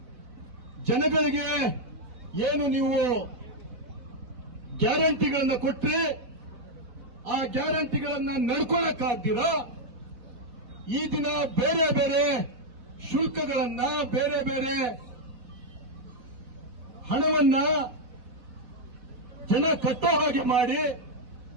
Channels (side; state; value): left; late; 4.1 ms